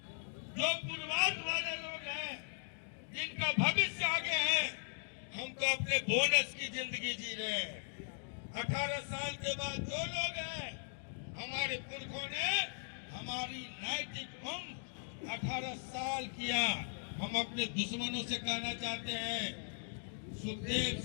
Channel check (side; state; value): right; silent; digital silence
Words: जो पूर्वार्ध वाले लोग हैं, जिनका भविष्य आगे है। हम तो अपने बोनस की जिंदगी जी रहे हैं। 18 साल के बाद जो लोग हैं, हमारे पुरखों ने हमारी नैतिक उम्र 18 साल किया। हम अपने दुश्मनों से कहना चाहते हैं, सुखदेव